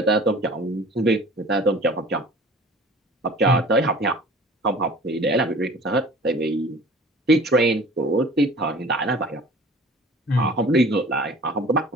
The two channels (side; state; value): both; normal; correlation 0.45